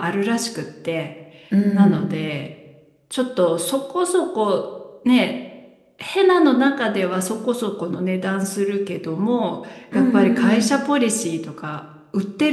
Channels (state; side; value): identical; both; correlation 1.00